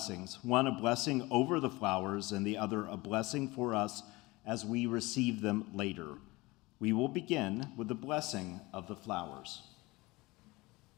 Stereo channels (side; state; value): right; quieter; 22.1 dB